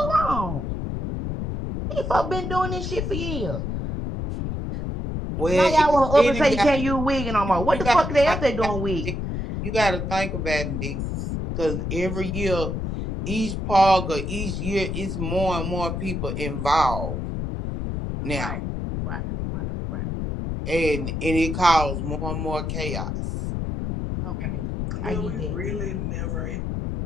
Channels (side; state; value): left; noise; rumble, 3 dB below the sound